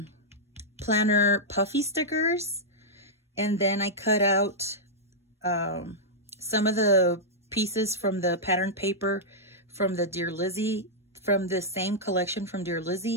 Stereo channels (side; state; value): both; normal; correlation -0.08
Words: planner puffy stickers. And then I cut out some of the pieces from the pattern paper from the Dear Lizzie, from the same collection from Dear